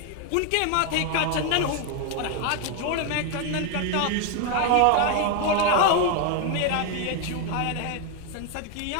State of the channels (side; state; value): both; different; correlation 0.01